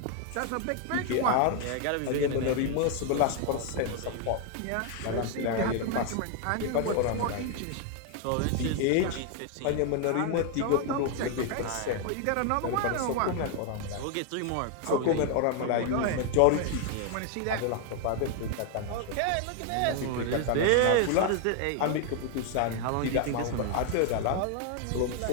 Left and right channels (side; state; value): both; different; correlation 0.00